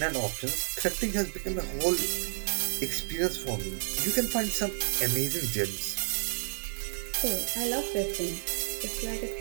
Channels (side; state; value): left; silent; digital silence